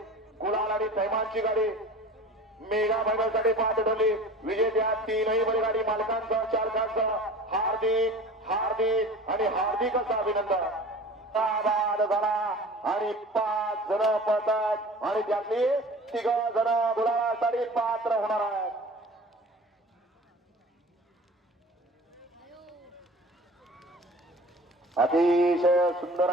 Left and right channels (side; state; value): both; normal; correlation 0.40